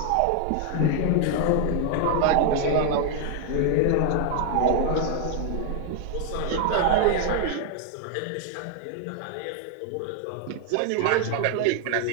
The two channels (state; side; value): different; both; correlation 0.00